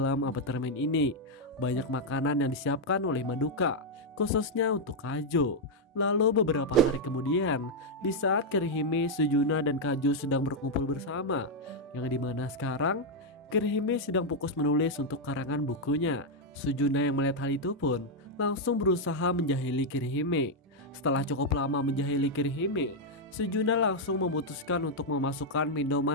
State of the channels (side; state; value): both; normal; correlation 0.00